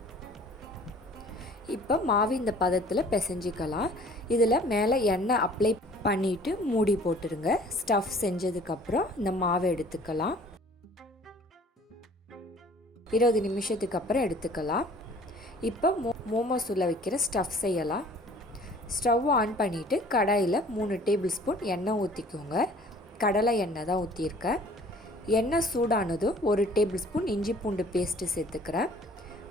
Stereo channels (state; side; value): normal; both; correlation 0.52